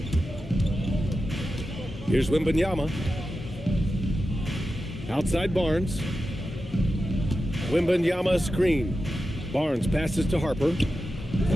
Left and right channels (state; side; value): normal; both; correlation 0.91